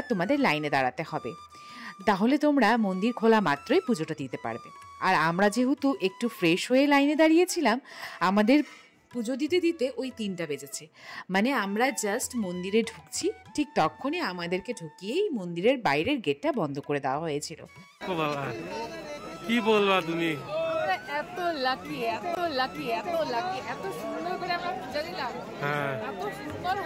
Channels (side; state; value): both; identical; correlation 1.00